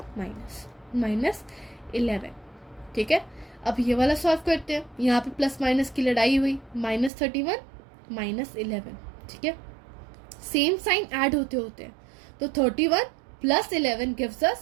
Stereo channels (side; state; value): left; drops out; at 7.1 s